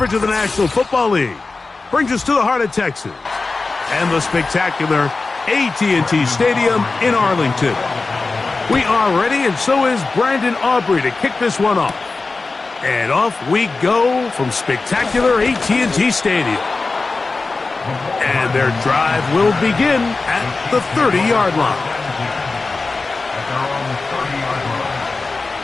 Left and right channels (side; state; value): right; quieter; 3.8 dB